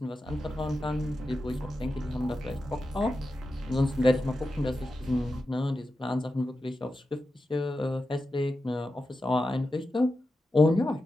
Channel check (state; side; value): normal; both; correlation 0.91